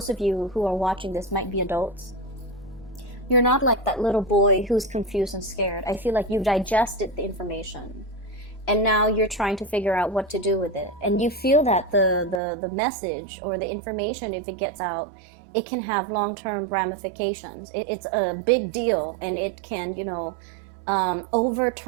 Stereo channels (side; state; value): left; drops out; at 12.4 s